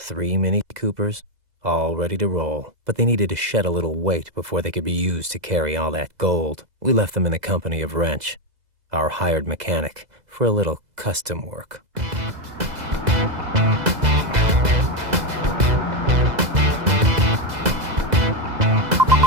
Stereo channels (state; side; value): late; left; 2.0 ms